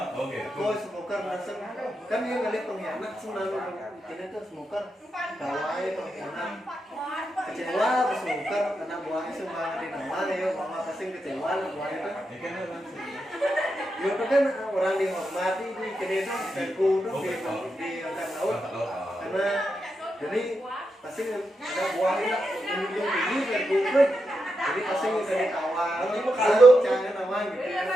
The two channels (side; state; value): both; normal; correlation 0.86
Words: Oke. Kau smoker langsung kan dia ngeliat pengkhianat selalu ini tuh smoker bawahnya pengkhianat kecewa pas smoker anak buahnya semua di nama ya mama pasti kecewa lah buahnya tuh Ini kan langsung. ya itu kan orang dihormati di kini tuh dan kudu di angkat laut karena jadi pasti ada buahnya menunjuk tinggi dan kudu jadi pasti dari awal kalau jangan nama gitu